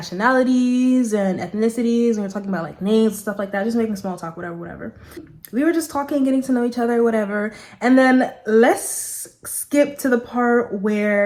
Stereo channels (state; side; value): identical; both; correlation 1.00